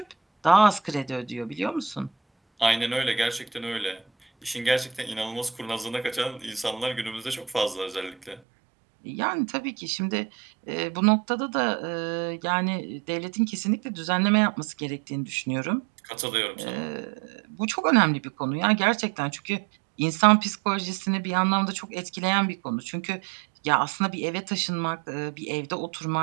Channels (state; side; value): drops out; left; at 8.4 s